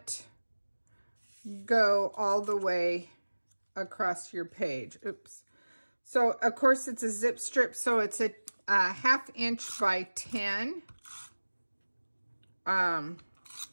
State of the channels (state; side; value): inverted; both; correlation -1.00